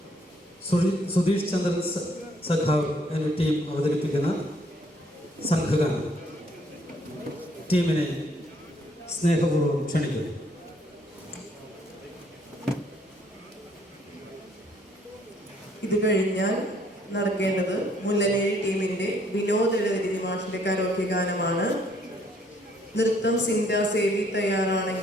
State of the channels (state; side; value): normal; both; correlation 0.65